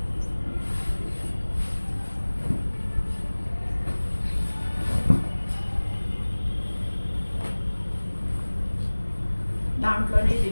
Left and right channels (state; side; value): inverted; both; correlation -1.00